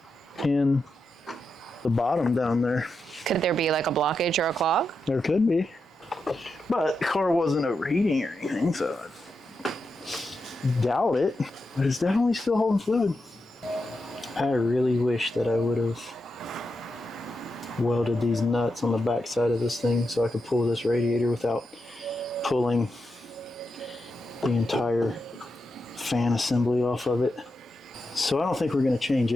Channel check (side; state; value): both; normal; correlation 0.87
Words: in the bottom down there. Could there be like a blockage or a clog? There could be. But the car wasn't overheating or anything, so I doubt it. But it's definitely still holding fluid. I really wish that I would have welded these nuts on the back side of this thing so I could pull this radiator without pulling the entire fan assembly off of it. So I don't think we're going to change